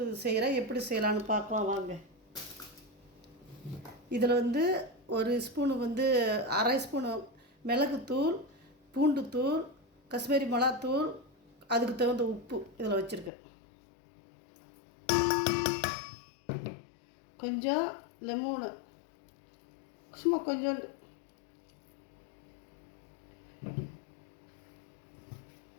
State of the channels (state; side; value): drops out; right; at 13.3 s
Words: செய்கிறேன். எப்படி செய்யலான்னு பார்க்கலாம் வாங்க. இதில் வந்து ஒரு ஸ்பூனு வந்து அரை ஸ்பூனு மிளகுத்தூள், பூண்டுத்தூள், காஷ்மீரி மிளகாத்தூள், அதுக்கு தகுந்த உப்பு இதில் வச்சுருக்கேன். கொஞ்சம் லெமனு, சும்மா கொஞ்சோண்டு,